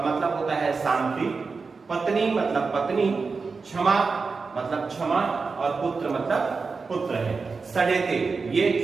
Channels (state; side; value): quieter; left; 4.6 dB